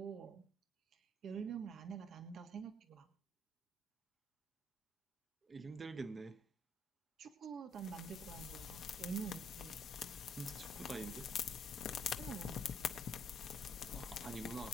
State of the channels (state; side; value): normal; both; correlation 0.67